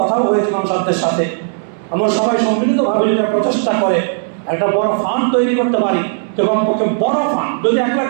হয়েছে, মানুষদের সাথে আমরা সবাই সম্মিলিতভাবে যদি প্রচেষ্টা করে একটা বড় ফান্ড তৈরি করতে পারি, তো কমপক্ষে বড় ফান্ড যদি 1 লাখ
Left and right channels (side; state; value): left; silent; digital silence